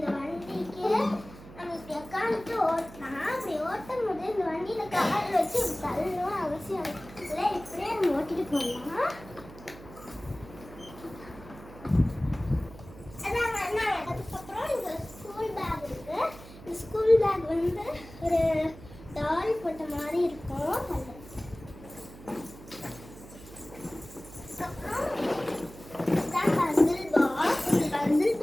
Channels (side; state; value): right; noise; hum, 17 dB below the sound